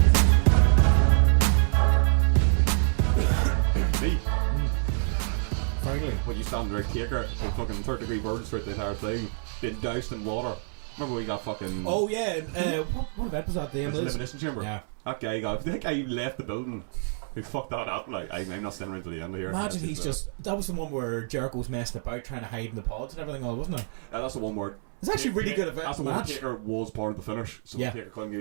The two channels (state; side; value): silent; left; 60 dB below the other